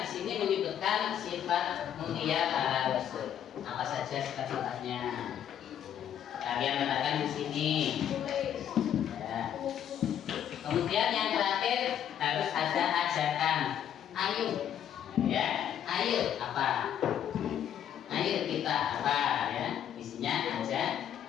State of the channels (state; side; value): quieter; right; 9.8 dB